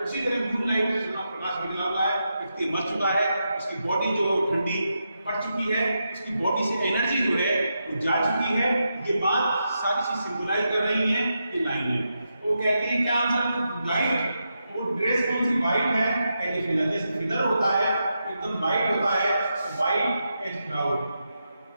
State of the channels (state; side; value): inverted; both; correlation -0.86